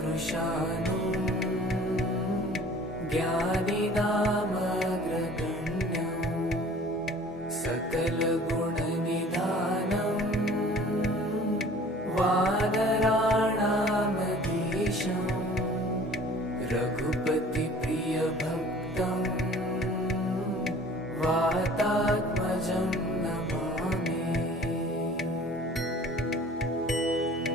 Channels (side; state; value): both; normal; correlation 0.48